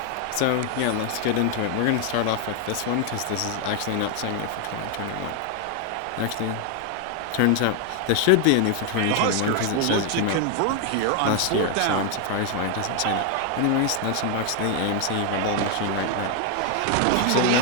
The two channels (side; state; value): both; different; correlation 0.00